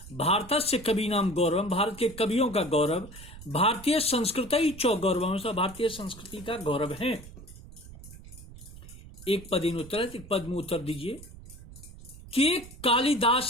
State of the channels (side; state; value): right; noise; rumble, 17 dB below the sound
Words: भारत से कवि नाम गौरव। भारत के कवियों का गौरव। भारतीय संस्कृति चौ गौरव। भारतीय संस्कृति का गौरव है। एक पद इन उत्तर एक पद में उत्तर दीजिए कि